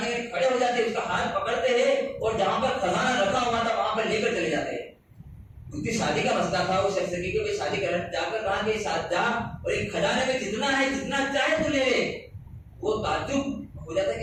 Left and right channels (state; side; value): identical; both; correlation 1.00